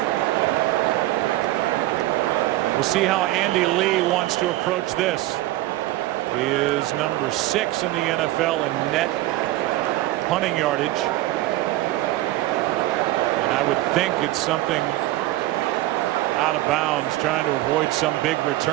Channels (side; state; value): left; quieter; 16.6 dB